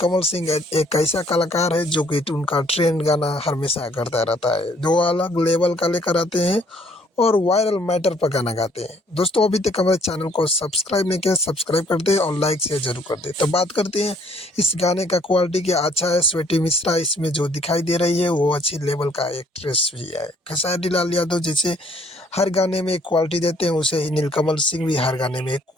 सिंह एक ऐसा कलाकार है जो कि उनका ट्रेंड गाना हमेशा करता रहता है, जो अलग लेवल का लेकर आते हैं और वायरल मैटर पर गाना गाते हैं। दोस्तों अभी तक हमारे चैनल को सब्सक्राइब नहीं किया, सब्सक्राइब कर दे और लाइक शेयर जरूर कर दे। तो बात करते हैं इस गाने का क्वालिटी क्या अच्छा है। स्वीटी मिश्रा इसमें जो दिखाई दे रही है वो अच्छी लेवल का एक्ट्रेस भी है। खेसारी लाल यादव जैसे हर गाने में एक क्वालिटी देते हैं, उसे ही नीलकमल सिंह भी हर गाने में एक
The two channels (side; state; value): both; normal; correlation 0.62